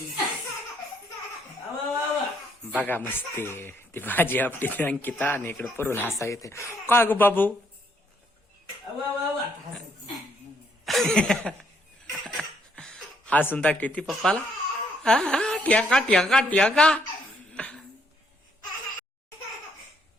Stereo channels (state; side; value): normal; both; correlation 0.71